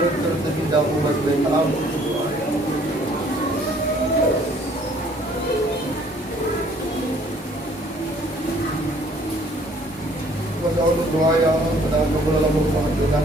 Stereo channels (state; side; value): normal; both; correlation 0.59